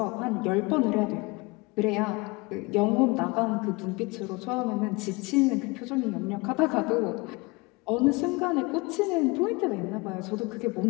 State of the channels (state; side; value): quieter; right; 25.4 dB